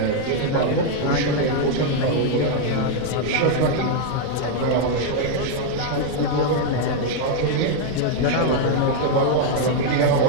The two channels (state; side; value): different; both; correlation 0.00